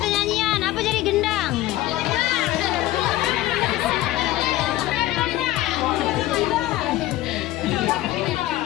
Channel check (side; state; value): right; quieter; 15.8 dB